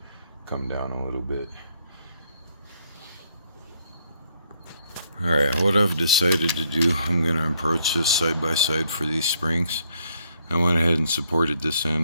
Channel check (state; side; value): inverted; both; correlation -0.71